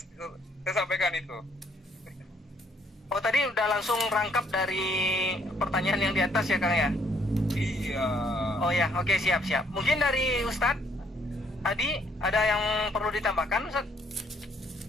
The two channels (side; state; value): both; normal; correlation 0.67